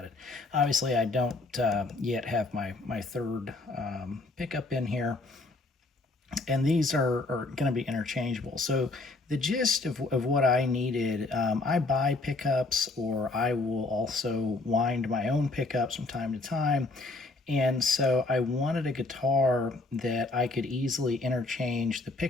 it. Obviously, I don't yet have my third pickup in here. And these are going to be interchangeable. So the gist of what I needed, I buy pickups, or I will also wind my own pickups from time to time. And so I wanted a guitar that I could easily interchange the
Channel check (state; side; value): quieter; right; 3.3 dB